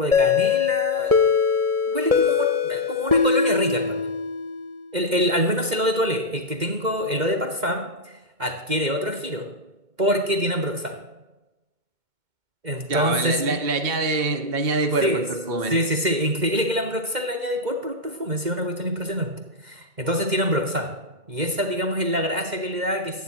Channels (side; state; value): left; late; 2.1 ms